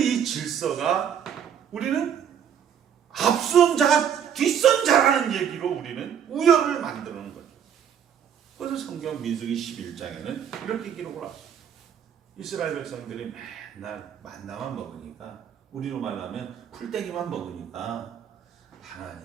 질서가 우리는 앞선 자, 뒷선 자라는 얘기로 우리는 우열을 만드는 거죠. 그래서 성경 민수기 11장에는 이렇게 기록을 합니다. 이스라엘 백성들이 맨날 만나만 먹으니까 우리로 말하면 풀떼기만 먹으니까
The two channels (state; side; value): quieter; left; 8.5 dB